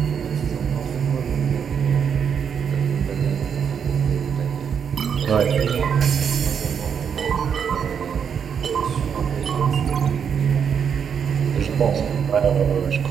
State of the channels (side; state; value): left; quieter; 7.3 dB